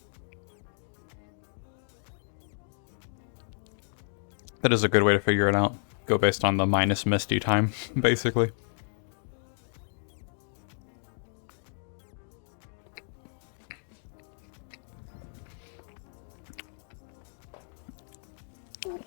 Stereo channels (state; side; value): silent; right; digital silence